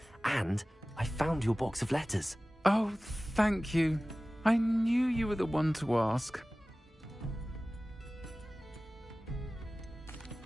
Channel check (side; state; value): both; normal; correlation 0.97